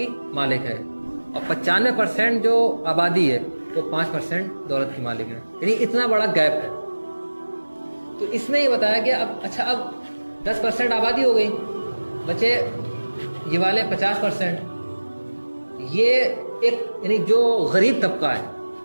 مالک ہے اور 95% جو آبادی ہے وہ 5% دولت کی مالک ہے. یعنی اتنا بڑا گیپ ہے. تو اس میں یہ بتایا کہ اب 10% آبادی ہو گئی, بچے یہ والے 50%. یہ ایک یعنی جو غریب طبقہ ہے,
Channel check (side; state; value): both; inverted; correlation -1.00